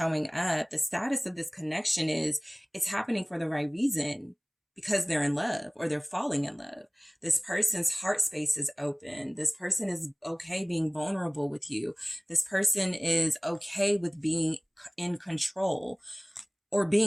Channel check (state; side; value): identical; both; correlation 1.00